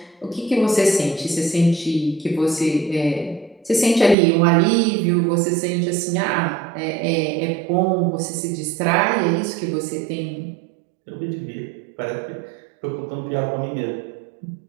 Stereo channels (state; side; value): drops out; left; at 4.2 s